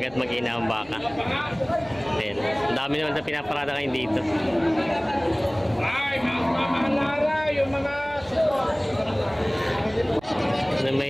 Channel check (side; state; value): right; noise; hum, 24 dB below the sound